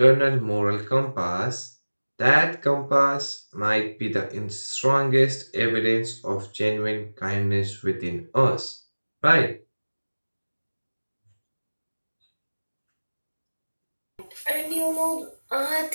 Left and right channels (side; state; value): both; inverted; correlation -1.00